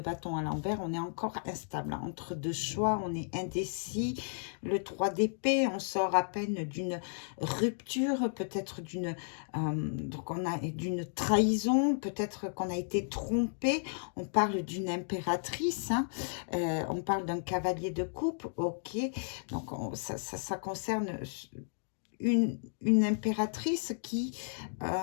bâton à l'envers, on est encore instable. Entre deux choix, on est indécis. Le 3 d'épée, on sort à peine d'une rupture, peut-être d'une d'une trahison, peut-être qu'on a été trompé. On parle d'une impératrice, hein. On parle d'un cavalier de coupe, ok. Donc ça concerne une impératrice qui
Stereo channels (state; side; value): silent; right; digital silence